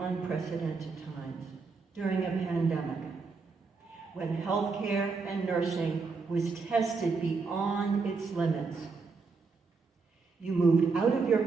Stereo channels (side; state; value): left; quieter; 4.5 dB